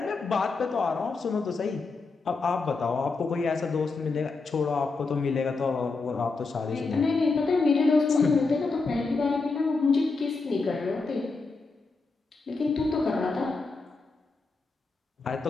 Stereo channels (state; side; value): quieter; right; 4.1 dB